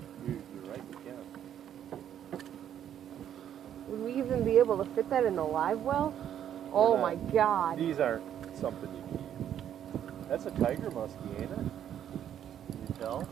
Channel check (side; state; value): left; quieter; 10.0 dB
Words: You're right, you can. Would we even be able to fit that in the live well? Oh my god. These aren't something you keep. That's a tiger muskie, ain't it? Can you tell?